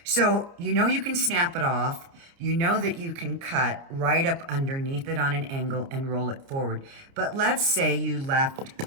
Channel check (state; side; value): late; left; 29 ms